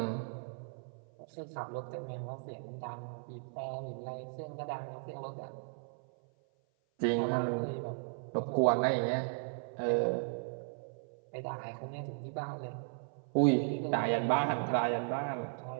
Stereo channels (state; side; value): silent; left; 54 dB below the other